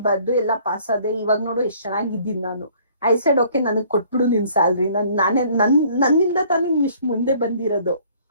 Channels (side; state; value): both; inverted; correlation -0.57